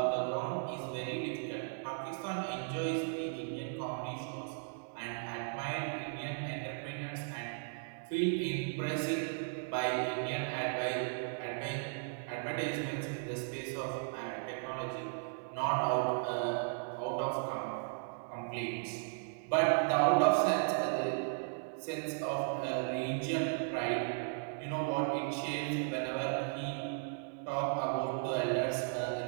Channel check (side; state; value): left; silent; 54 dB below the other